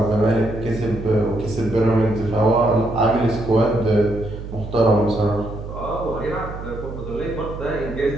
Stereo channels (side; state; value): right; noise; hum, 10 dB below the sound